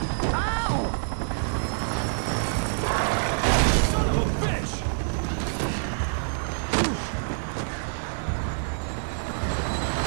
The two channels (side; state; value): left; silent; 61 dB below the other